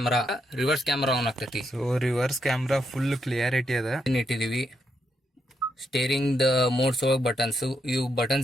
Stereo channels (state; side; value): normal; both; correlation 0.80